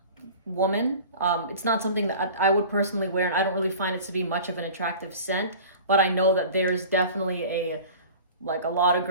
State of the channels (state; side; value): inverted; both; correlation -0.40